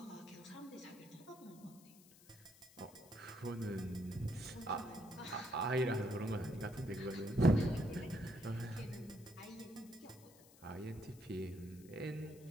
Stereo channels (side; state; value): left; noise; hiss, 23 dB below the sound